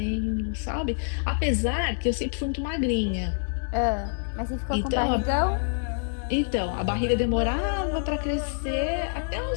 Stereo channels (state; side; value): silent; right; 60 dB below the other